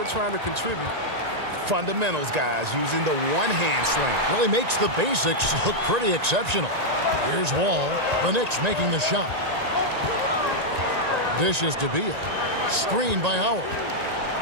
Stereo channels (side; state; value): left; late; 1.9 ms